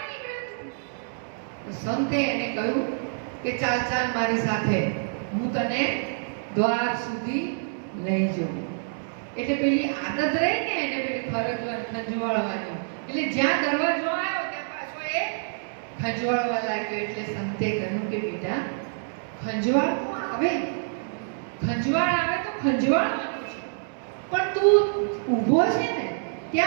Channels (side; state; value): left; silent; digital silence